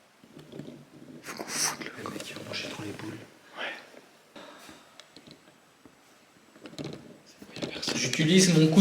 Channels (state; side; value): identical; both; correlation 1.00